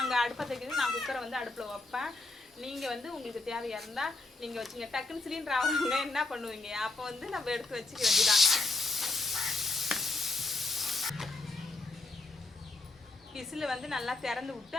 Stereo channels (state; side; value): quieter; right; 3.2 dB